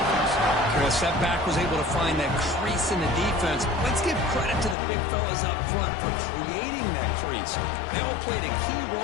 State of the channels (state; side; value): drops out; right; at 4.8 s